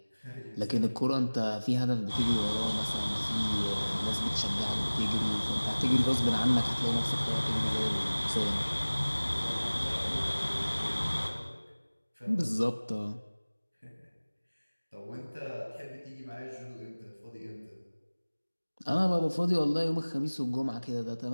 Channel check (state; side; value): inverted; both; correlation -1.00